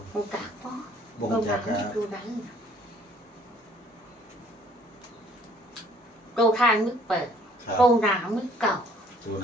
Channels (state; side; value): normal; both; correlation 0.60